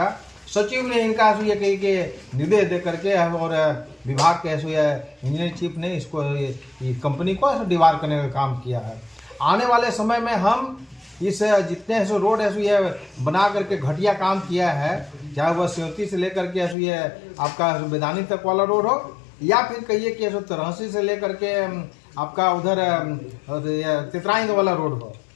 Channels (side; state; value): right; drops out; at 16.8 s